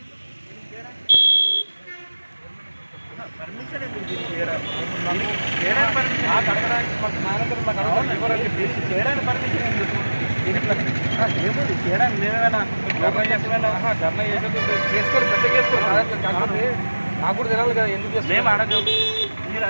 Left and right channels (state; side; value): inverted; both; correlation -1.00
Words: పర్మిషన్ ఎందుకు చేయడానికి పర్మిషన్ ఎందుకు? ఏముంది చేయడానికి మేమేమైనా ధర్నా చేసుకొని పెద్ద చేసుకోవాలి. నాకు కూడా తెలియాలి కదా ఎందుకు మేము అడగం. మీరు